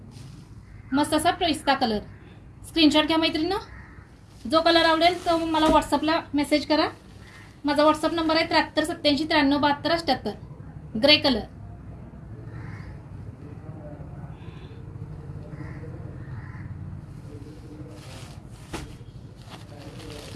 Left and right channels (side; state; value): both; identical; correlation 1.00